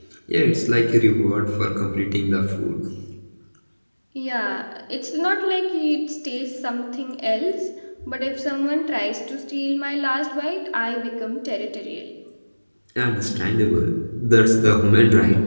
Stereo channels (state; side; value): inverted; both; correlation -1.00